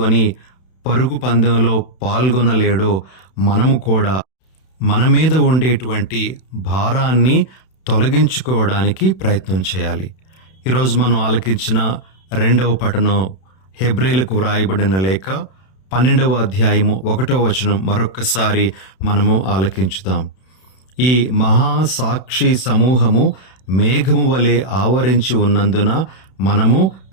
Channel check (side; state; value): right; late; 31 ms